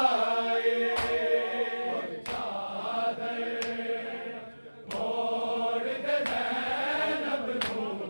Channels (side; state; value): both; inverted; correlation -1.00